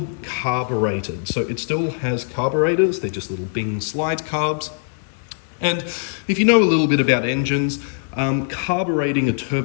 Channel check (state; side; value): silent; right; digital silence